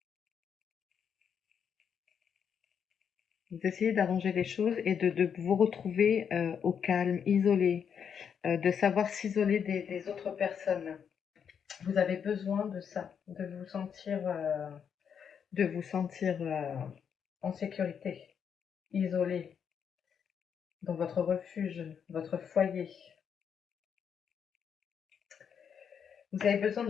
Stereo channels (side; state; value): right; quieter; 7.5 dB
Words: Vous essayez d'arranger les choses et de vous retrouver au calme, isolé, de savoir s'isoler des autres personnes. Vous avez besoin de ça, de vous sentir en sécurité, isolé, dans votre refuge, votre foyer. Vous avez besoin de